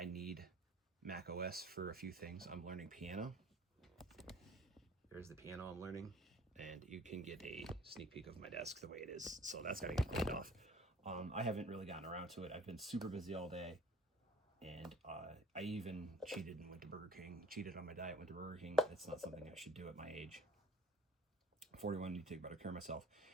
need Mac OS for a few things. I'm learning piano. Here's the piano I'm learning, and you can get a sneak peek of my desk the way it is. So that's got to get cleaned off. I haven't really gotten around to it. I've been super busy all day. And I even cheated and went to Burger King. Cheated on my diet, went to Burger King. It's not something I should do at my age. 41, I need to take better care of myself.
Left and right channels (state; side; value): normal; both; correlation 0.48